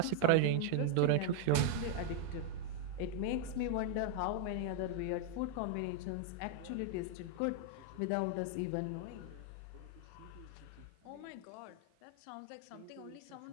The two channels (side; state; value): both; different; correlation 0.00